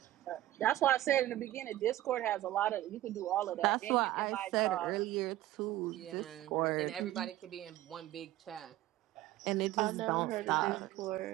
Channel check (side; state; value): left; quieter; 15.0 dB